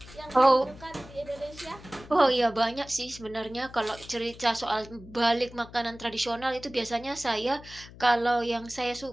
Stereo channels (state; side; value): noise; left; hum, 18 dB below the sound